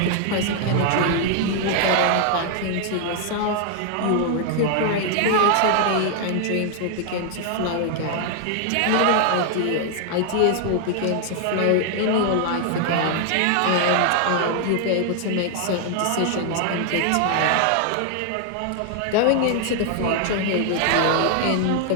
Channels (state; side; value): different; both; correlation 0.00